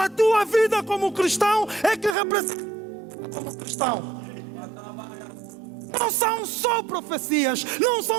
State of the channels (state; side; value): drops out; left; at 2.1 s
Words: tua vida como cristão, é que representa como cristão. Não são só profecias, não